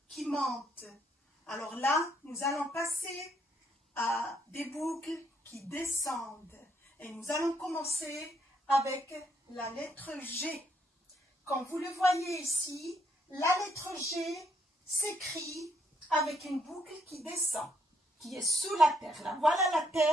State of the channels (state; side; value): normal; both; correlation 0.72